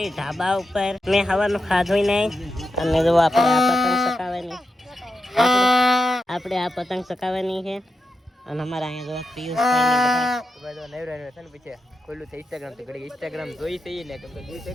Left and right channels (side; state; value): both; normal; correlation 0.88